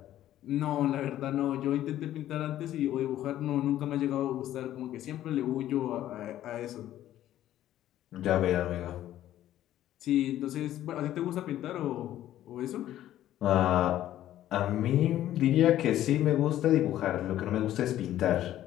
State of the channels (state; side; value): quieter; right; 12.8 dB